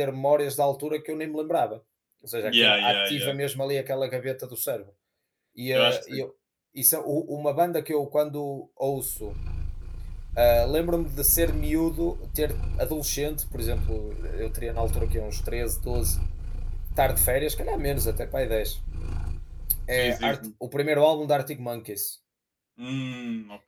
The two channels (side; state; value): both; identical; correlation 1.00